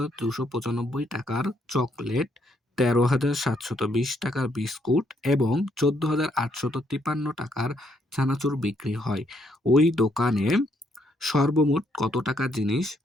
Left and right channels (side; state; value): both; normal; correlation 0.73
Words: টাকার চকলেট, ১৩,৭২০ টাকার বিস্কুট এবং ১৪,৮৫৩ টাকার চানাচুর বিক্রি হয়। ওই দোকানে সর্বমোট কত টাকার জিনিস